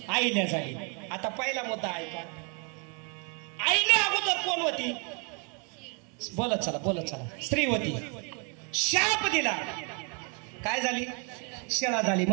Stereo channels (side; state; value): left; quieter; 35.5 dB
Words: आईल्या झाली. आता पहिला मुद्दा ऐका, आईने अगोदर कोण होती, बोलत चला बोलत चला, स्त्री होती. शाप दिला, काय झाली, शिळा झाली,